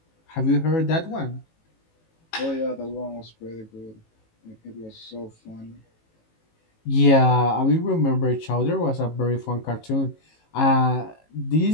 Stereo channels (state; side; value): late; right; 18 ms